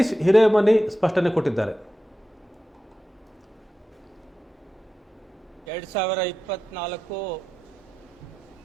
ಹಿರೇಮನಿ ಸ್ಪಷ್ಟನೆ ಕೊಟ್ಟಿದ್ದಾರೆ. 2024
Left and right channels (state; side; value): normal; both; correlation 0.91